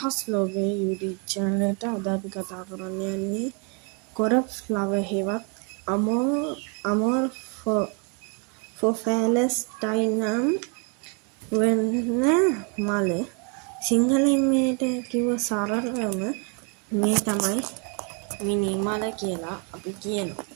ලෝකයේ YouTube channel එකට අද අපි කතා කරන්න යන්නේ කොරප් ෆ්ලවර් හෙවත් අමෝර් ෆොෆැලස්ටයිනම් වෙන්න මල සිංහලෙන් මේට කිව්ව සරලවම මේ තමයි මිනි මල කියලා අපි කියනවා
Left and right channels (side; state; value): left; quieter; 34.4 dB